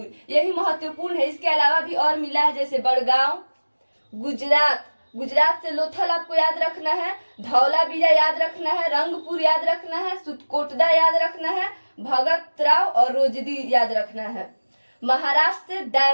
यही महत्वपूर्ण है। इसके अलावा भी और मिला है, जैसे बड़गांव। गुजरात से लोथल आपको याद रखना है, धौलावीरा याद रखना है, रंगपुर याद रखना है, सुतकोटदा याद रखना है, भगतराव और रोजदी याद रखना है। महाराष्ट्र से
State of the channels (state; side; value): inverted; both; correlation -1.00